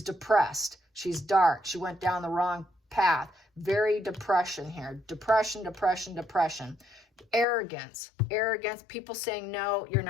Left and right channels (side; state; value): right; drops out; at 7.5 s